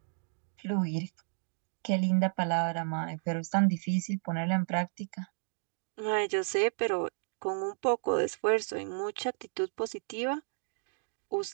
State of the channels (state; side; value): silent; left; 56 dB below the other